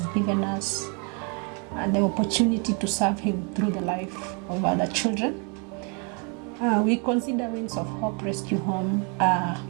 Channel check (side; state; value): left; quieter; 35.9 dB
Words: given us the opportunity to serve Him through the life of other children. We consider Wings of Hope Rescue Home